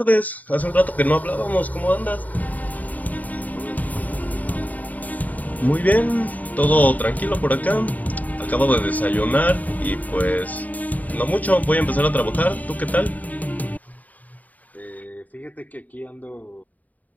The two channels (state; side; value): late; right; 0.076 ms